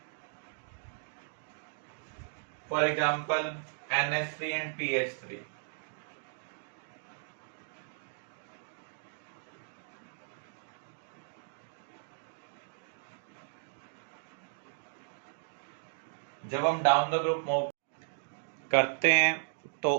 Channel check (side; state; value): left; silent; digital silence